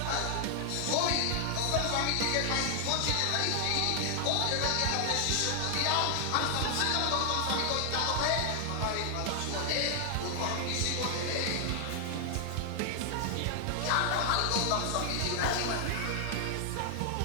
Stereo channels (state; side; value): different; both; correlation 0.00